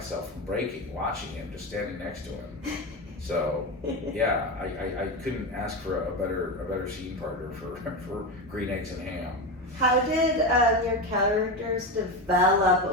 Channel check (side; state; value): both; normal; correlation 0.18